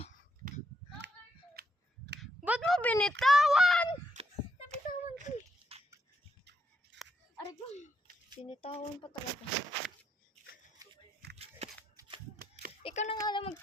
Ba't mo binitawan? Nabitawan ko eh. Aray ko. Binitawan pa talaga. Ikaw na nga lang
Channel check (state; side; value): normal; both; correlation 0.78